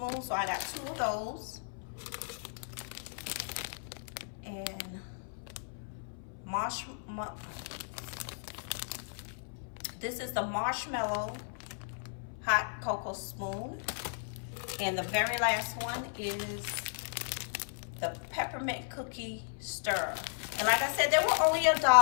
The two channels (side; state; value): right; silent; 54 dB below the other